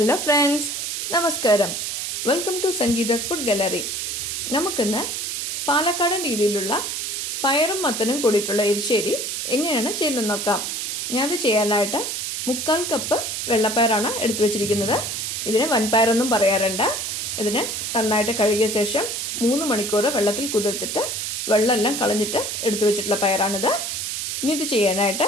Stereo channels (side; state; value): right; noise; hiss, 3 dB below the sound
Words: friends, നമസ്കാരം. Welcome to Sangeetha's food gallery. നമുക്കിന്ന് പാലക്കാടൻ രീതിയിലുള്ള പയറും മത്തനും കൂടിയിട്ടുള്ള എരിശ്ശേരി എങ്ങനെയാണ് ചെയ്യുന്നത് നോക്കാം. ഞാനത് ചെയ്യാനായിട്ട് 3/4 കപ്പ് വെള്ളപ്പയറാണ് എടുത്തു വെച്ചിരിക്കുന്നത്. ഇതിന് വൻപയറൊന്നും പറയാറുണ്ട്. ഇതിന് നന്നായിട്ട് കഴുകിയ ശേഷം 3 മണിക്കൂർ വെള്ളത്തിൽ കുതിർത്തിട്ട് വെള്ളമെല്ലാം കളഞ്ഞിട്ട് എടുത്തു വെച്ചിട്ടുള്ള പയറാണിത്. ഇനി ഇത് ചെയ്യാനായിട്ട്